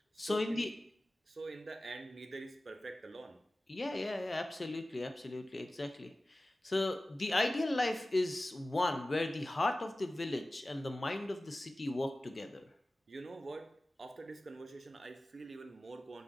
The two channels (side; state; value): both; normal; correlation 0.96